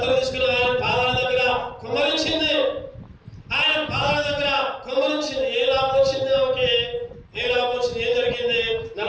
తీసుకుని ఆయన పాదాల దగ్గర కుమ్మరించింది. ఆయన పాదాల దగ్గర కుమ్మరించింది. ఏ లాభం వచ్చింది ఆమెకి? ఏం జరిగింది?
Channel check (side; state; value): both; identical; correlation 1.00